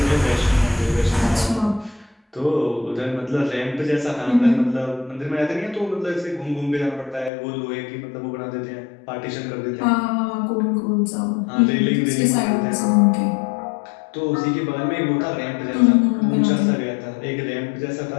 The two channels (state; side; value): drops out; right; at 7.3 s